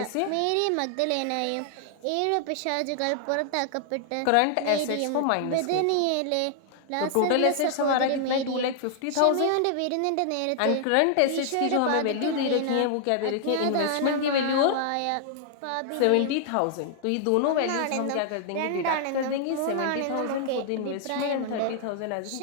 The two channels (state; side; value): different; both; correlation -0.01